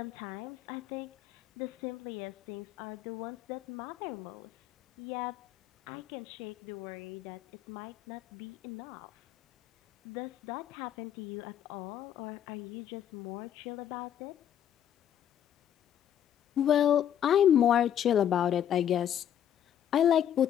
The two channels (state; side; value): quieter; right; 10.0 dB